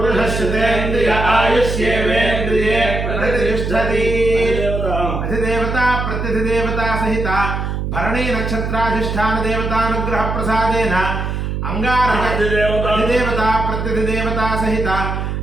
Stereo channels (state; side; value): noise; right; hum, 3 dB below the sound